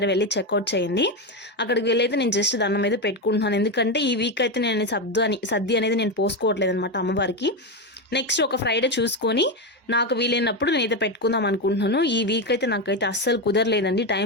వెళ్ళి చెక్అవుట్ చేయండి. అక్కడికి వెళ్ళి అయితే నేను జస్ట్ దండం అయితే పెట్టుకుంటున్నాను. ఎందుకంటే ఈ వీక్ అయితే నేను సర్ది అనేది నేను పోసుకోవట్లేదు అనమాట అమ్మవారికి. నెక్స్ట్ ఒక ఫ్రైడే చూసుకొని నాకు వీలైనప్పుడు నేనైతే పెట్టుకుందాం అనుకుంటున్నాను. ఈ వీక్ అయితే నాకైతే అస్సలు కుదరలేదండి,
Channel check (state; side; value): normal; both; correlation 0.11